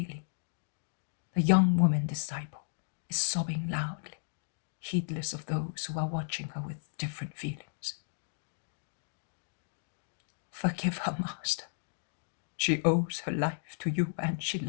the young woman disciple is sobbing loudly, heedless of those who are watching her with different feelings. Forgive her, Master. She owes her life to you and she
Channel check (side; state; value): right; silent; digital silence